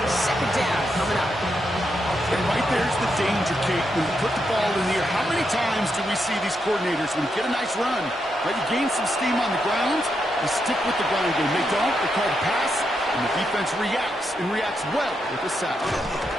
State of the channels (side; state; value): both; normal; correlation 0.82